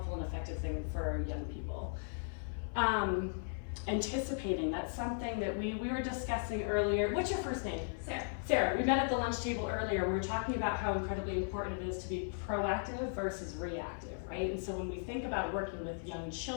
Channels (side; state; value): right; silent; 53 dB below the other